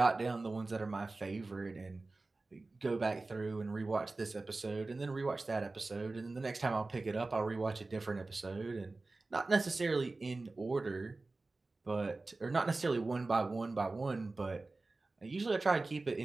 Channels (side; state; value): left; quieter; 3.4 dB